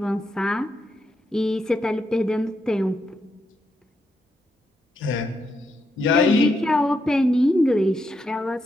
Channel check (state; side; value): normal; both; correlation 0.81